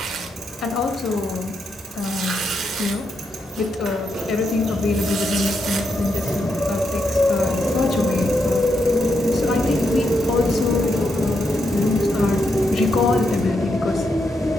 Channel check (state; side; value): normal; both; correlation 0.81